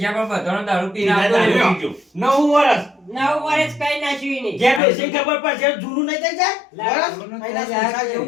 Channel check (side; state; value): right; drops out; at 4.8 s